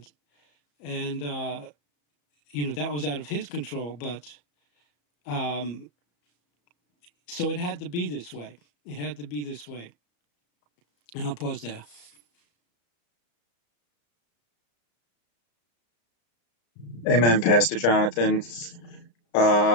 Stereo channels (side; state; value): right; late; 34 ms